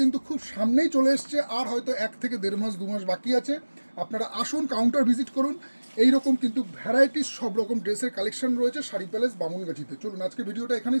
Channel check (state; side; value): inverted; both; correlation -1.00